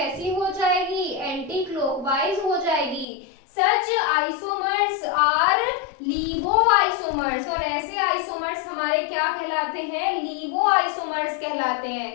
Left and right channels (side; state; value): right; drops out; at 3.1 s